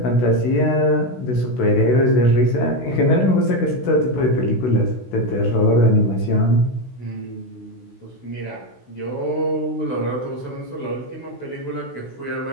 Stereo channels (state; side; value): late; right; 16 ms